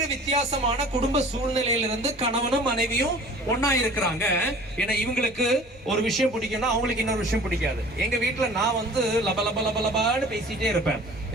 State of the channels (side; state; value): both; normal; correlation 0.46